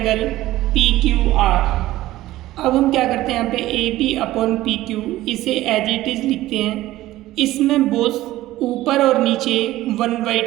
P Q R. अब हम क्या करते हैं, यहाँ पे A B upon P Q इसे एज इट इज लिखते हैं। इसमें बोथ ऊपर और नीचे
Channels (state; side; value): quieter; left; 16.0 dB